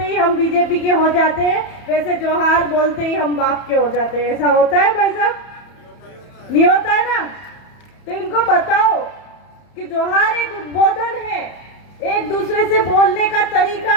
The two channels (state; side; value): late; right; 31 ms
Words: ही हम बीजेपी के हो जाते हैं, वैसे जोहार बोलते ही हम बाप के हो जाते हैं। ऐसा होता है भाई साहब? नहीं होता है ना? तो इनको बताओ कि जोहार एक उद्बोधन है, एक दूसरे से बोलने का